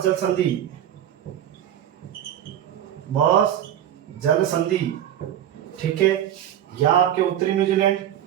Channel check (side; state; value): left; quieter; 10.8 dB